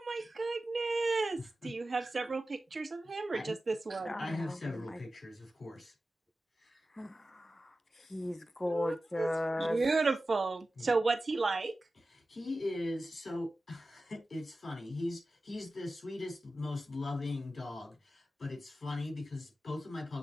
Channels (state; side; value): normal; both; correlation 0.94